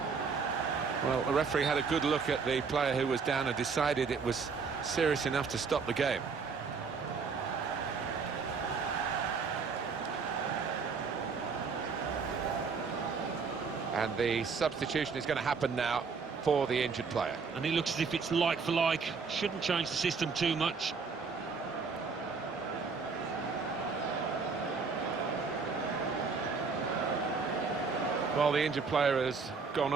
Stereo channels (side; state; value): left; quieter; 5.1 dB